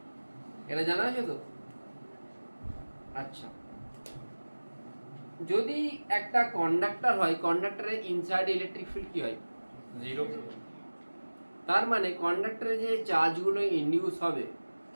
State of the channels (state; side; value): inverted; both; correlation -1.00